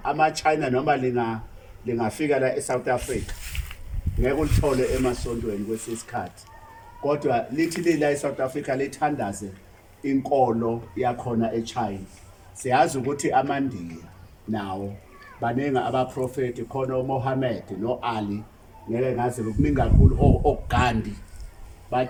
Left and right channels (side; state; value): both; identical; correlation 1.00